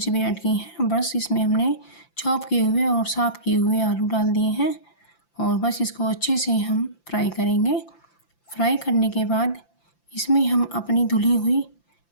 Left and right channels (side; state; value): right; late; 5.9 ms